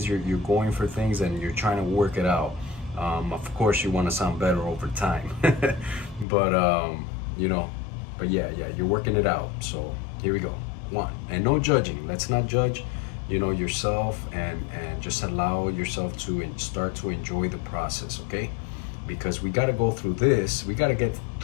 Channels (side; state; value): right; drops out; at 6.2 s